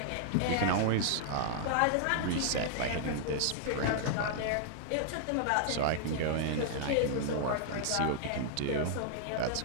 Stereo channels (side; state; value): both; different; correlation -0.01